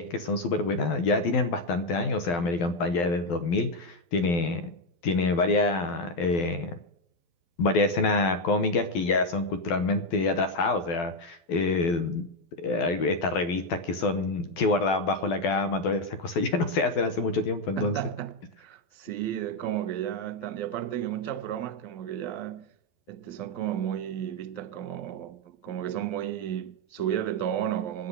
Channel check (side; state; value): right; late; 12 ms